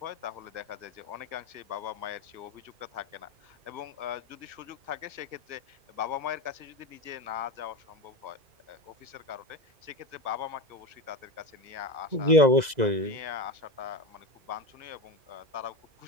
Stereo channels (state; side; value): late; left; 2.0 ms